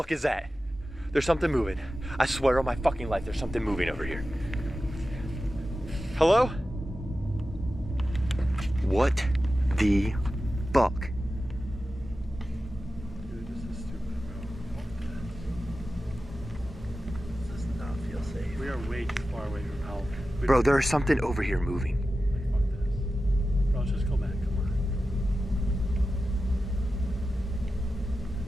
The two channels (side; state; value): both; normal; correlation 0.93